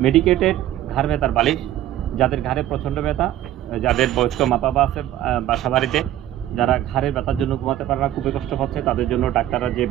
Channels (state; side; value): quieter; left; 13.0 dB